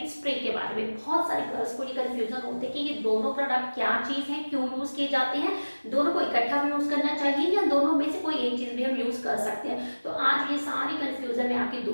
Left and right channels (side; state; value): both; inverted; correlation -1.00